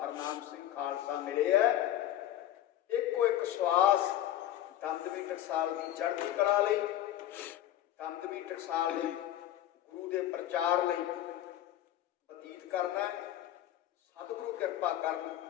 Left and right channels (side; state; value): right; quieter; 12.7 dB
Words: ਸਿੰਘ ਖਾਲਸਾ ਮਿਲੇ ਹੈ। ਇੱਕੋ ਇੱਕ ਸਵਾਸ ਦਮਦਮੀ ਟਕਸਾਲ ਦੀ ਚੜ੍ਹਦੀ ਕਲਾ ਲਈ, ਦਮਦਮੀ ਟਕਸਾਲ ਦੇ ਗੁਰੂ ਦੇ ਪ੍ਰਚਾਰ ਲਈ ਬਤੀਤ ਕਰਨਾ। ਸਤਿਗੁਰੂ ਕਿਰਪਾ ਕਰਨ,